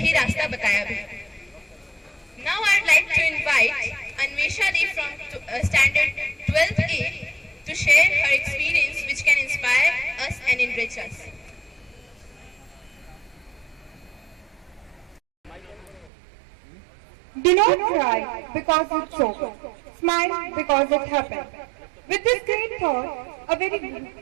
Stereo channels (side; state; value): left; drops out; at 16.1 s